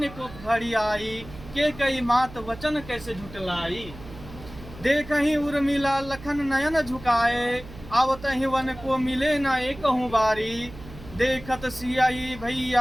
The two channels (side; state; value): right; noise; hum, 16 dB below the sound